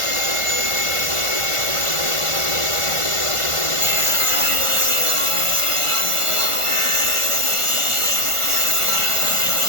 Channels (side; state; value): left; late; 1.4 ms